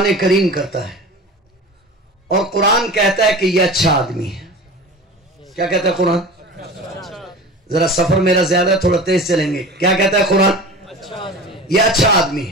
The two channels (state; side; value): normal; both; correlation 0.35